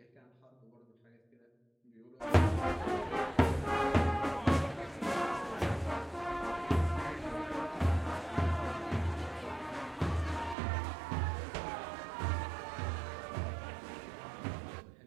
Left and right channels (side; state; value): left; drops out; at 10.6 s